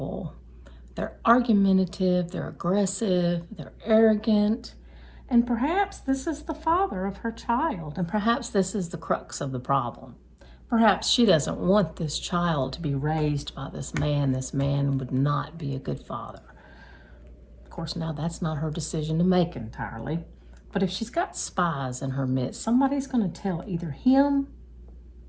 They're argumentative, they're aggressive, they're arrogant, and perhaps this is the father of her child, and perhaps this is the crux of the problem. Perhaps she doesn't want this child to be raised by this man. This man would not be a good father. Of course, now that's not her decision to make entirely, but if she's got spies in her midst, somebody's going to tell either him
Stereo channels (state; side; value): identical; both; correlation 1.00